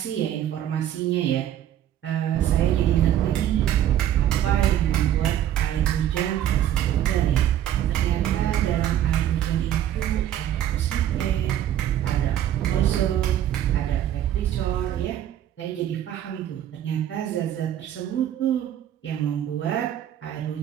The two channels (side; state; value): left; quieter; 11.3 dB